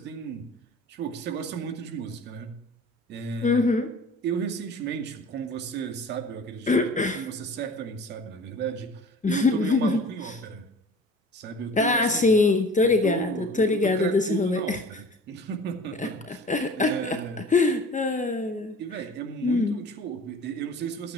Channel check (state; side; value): normal; both; correlation 0.43